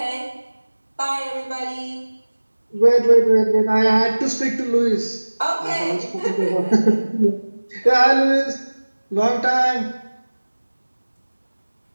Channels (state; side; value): inverted; both; correlation -1.00